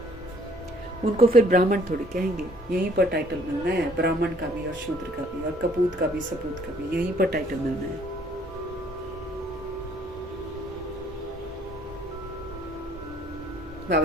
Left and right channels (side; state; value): both; normal; correlation 0.61